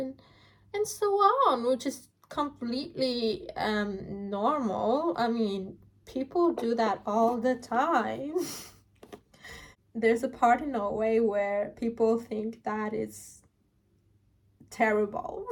so on, which is completely normal. I mean, people do that all the time. there's a part in Norway where people think that is terrible.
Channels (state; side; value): identical; both; correlation 1.00